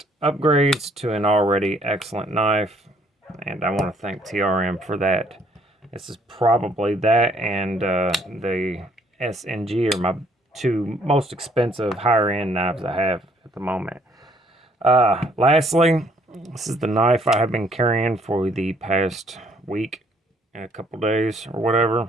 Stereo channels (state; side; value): normal; both; correlation 0.64